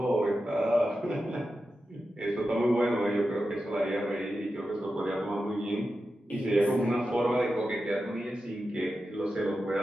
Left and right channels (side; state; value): both; normal; correlation 0.91